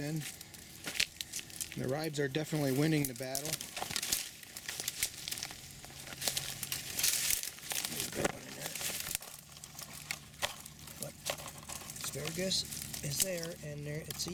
And the ribs are definitely winning the battle. There's a big one in there. But asparagus is there, and there it's a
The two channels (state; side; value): identical; both; correlation 1.00